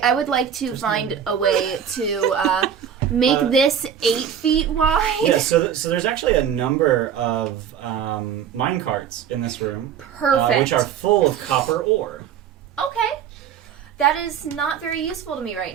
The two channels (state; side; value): quieter; left; 8.6 dB